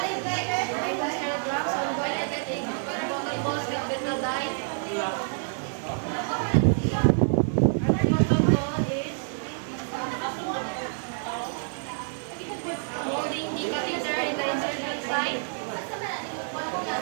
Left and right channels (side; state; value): left; silent; 60 dB below the other